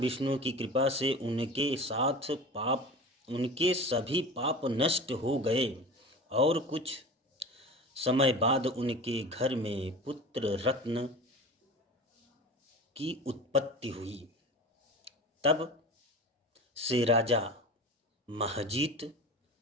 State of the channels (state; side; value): normal; both; correlation 0.34